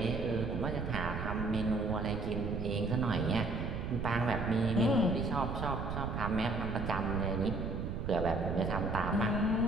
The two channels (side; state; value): right; noise; rumble, 4 dB below the sound